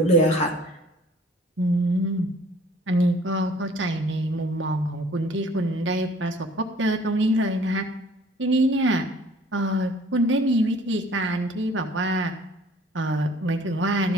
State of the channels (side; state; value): both; normal; correlation 0.53